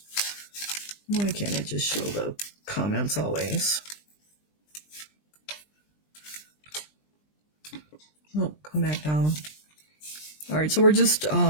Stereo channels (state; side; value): late; right; 20 ms